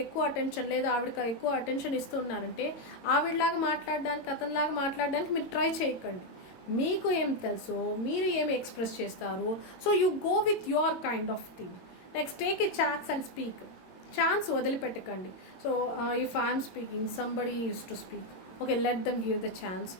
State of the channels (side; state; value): right; late; 22 ms